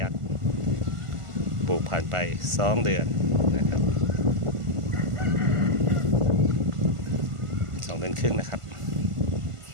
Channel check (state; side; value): late; left; 1.5 ms